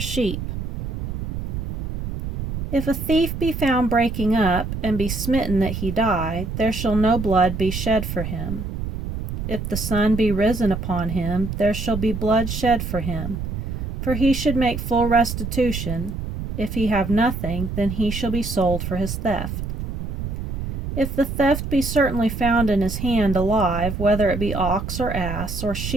If a thief be found breaking up, and be smitten that he die, there shall no blood be shed for him. If the sun be risen upon him, there shall be blood shed for him, for he should make full restitution. If he have nothing, then he shall be sold for his theft. If the theft be certainly found in his hand alive, whether it be ox or ass or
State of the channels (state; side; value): noise; right; rumble, 5 dB below the sound